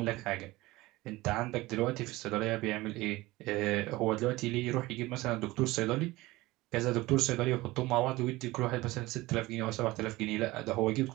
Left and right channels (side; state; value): left; quieter; 19.6 dB